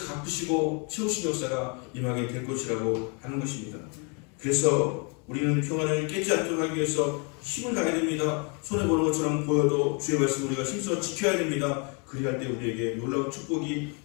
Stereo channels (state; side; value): quieter; right; 34.6 dB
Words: 갚으시고 채우신 역사가 임하게 될 것이라고 하는 것입니다. 그래서 우리는 평안을 깨지 않도록 하기 위해서 힘을 다해야 됩니다. 손해보는 것처럼 보여도 주의 말씀 우리가 힘써 지켜야 됩니다. 그리할 때 우리에게 놀라운 축복이